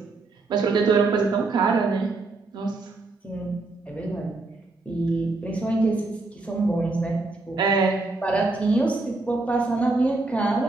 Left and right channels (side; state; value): left; quieter; 3.4 dB